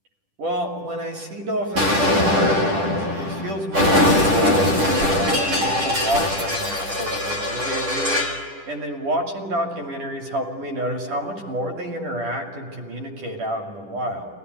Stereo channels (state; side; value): late; left; 10 ms